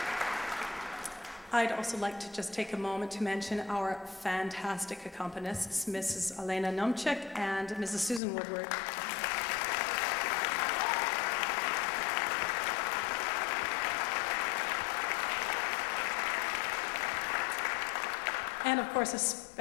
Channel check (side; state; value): right; drops out; at 8.2 s